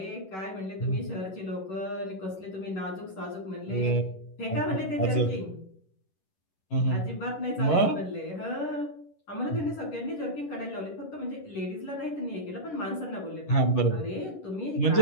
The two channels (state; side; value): late; right; 11 ms